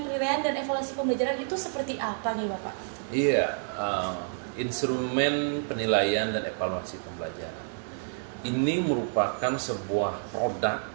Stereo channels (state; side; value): silent; left; digital silence